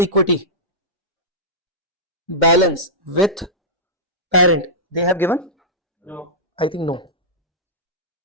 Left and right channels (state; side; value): normal; both; correlation -0.13